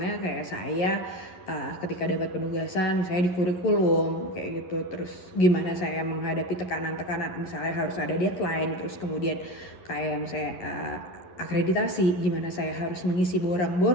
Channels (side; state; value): right; late; 11 ms